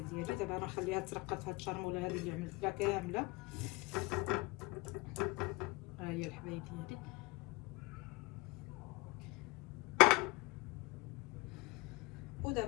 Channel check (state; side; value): quieter; right; 23.4 dB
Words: ديالي دابا غنخليها ترقد في هاد الشرموله هذه اللي عملت لها كامله. ها هي الحبايب ديالي.